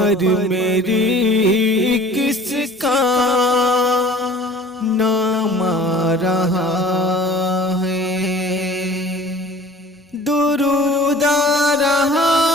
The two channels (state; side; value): normal; both; correlation 0.47